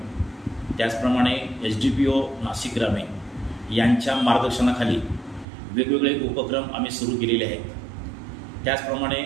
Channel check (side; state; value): left; drops out; at 5.5 s